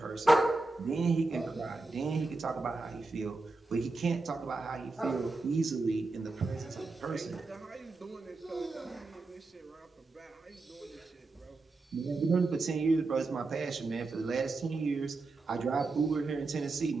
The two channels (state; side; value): quieter; left; 3.4 dB